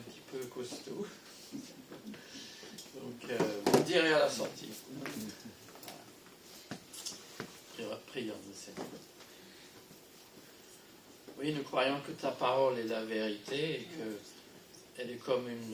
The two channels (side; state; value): both; identical; correlation 1.00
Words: peu costaud. Donc, vous me direz à la sortie. Prions le Seigneur. Oui, nous croyons que ta parole est la vérité et qu'elle est comme